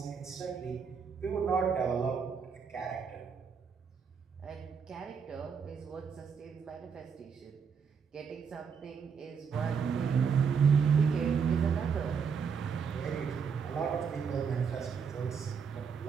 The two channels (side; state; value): left; quieter; 6.3 dB